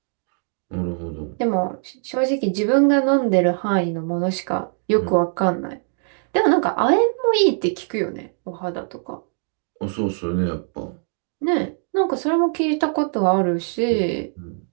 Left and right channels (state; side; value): silent; left; 61 dB below the other